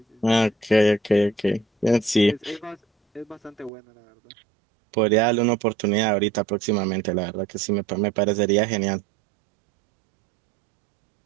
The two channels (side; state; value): left; drops out; at 3.7 s